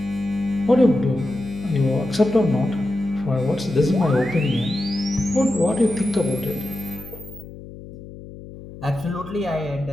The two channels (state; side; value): noise; left; hum, 15 dB below the sound